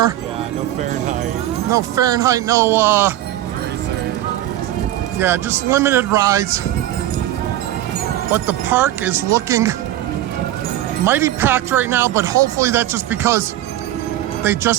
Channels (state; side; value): quieter; left; 13.7 dB